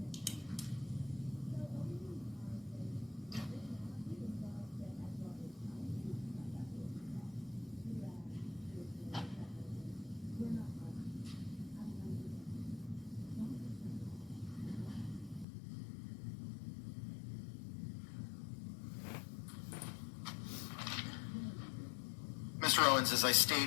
Mr. Owens, as I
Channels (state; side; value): drops out; right; at 15.5 s